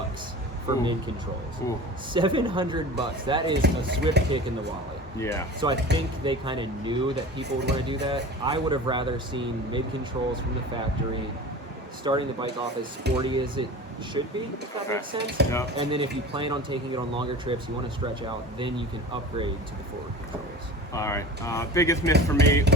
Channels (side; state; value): both; normal; correlation 0.36